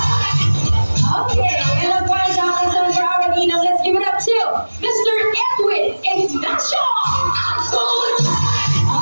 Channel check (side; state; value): both; inverted; correlation -1.00